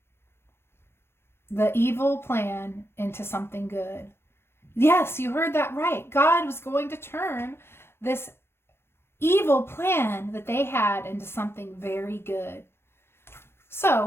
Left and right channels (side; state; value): right; late; 0.12 ms